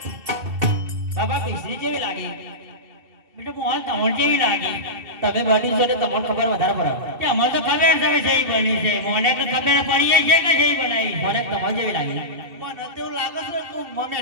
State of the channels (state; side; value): late; left; 2.7 ms